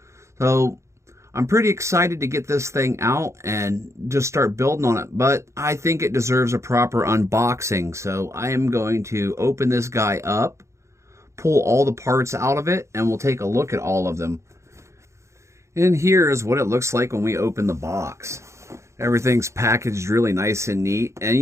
So I'm pretty excited to get this thing out and just start building on it, but I think it deserves a proper unboxing. So I am going to open this guy up, pull all the parts out of it, and we'll take a look at all of them. And here is what it looks like when we open the box. Everything's packaged really nice and neat. And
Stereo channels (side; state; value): left; late; 0.14 ms